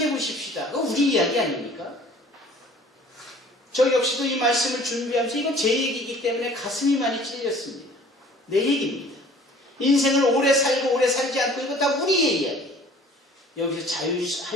보십시다. 그거 우리 이야기 아닙니까? 저 역시도 이 말씀을 준비하면서 이건 제 얘기이기 때문에 가슴이 많이 찔렸습니다. 내 얘기입니다. 인생을 오래 살고 오래 살지 않고 이거 다 우리의 이야기. 여기서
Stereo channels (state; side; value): normal; both; correlation 0.50